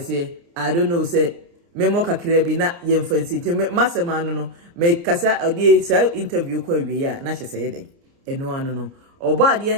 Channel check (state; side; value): late; left; 29 ms